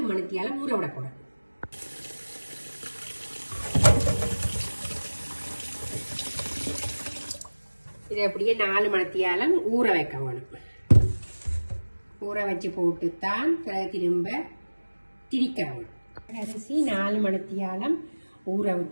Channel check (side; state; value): both; inverted; correlation -1.00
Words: மணித்தியால ஊற விட போறோம். இதை அப்படியே 4 மணித்தியாலம் ஊற வைக்க வேணும். ஊற வச்சு போட்டுத்தான் திரும்ப திரிக்க வேணும். அரிசி 4 மணித்தியாலம் ஊற